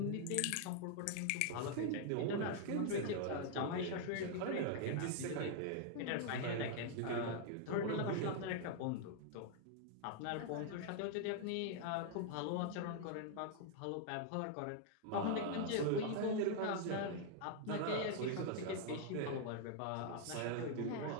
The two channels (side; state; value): both; different; correlation 0.00